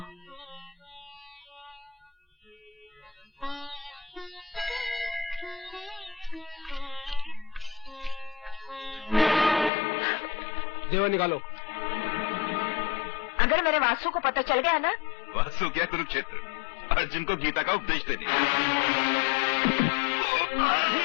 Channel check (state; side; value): drops out; right; at 9.7 s